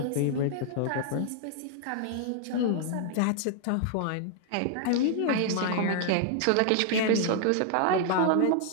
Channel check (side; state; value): both; different; correlation -0.01